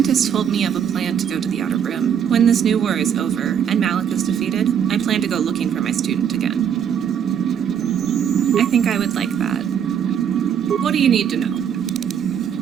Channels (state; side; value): quieter; left; 8.4 dB